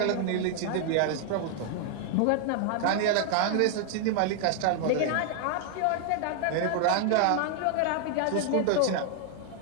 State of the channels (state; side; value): different; both; correlation 0.00